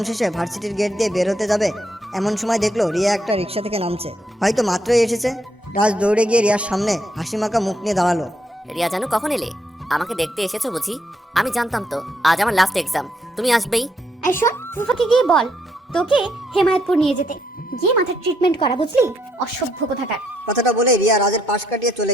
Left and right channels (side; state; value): both; normal; correlation 0.74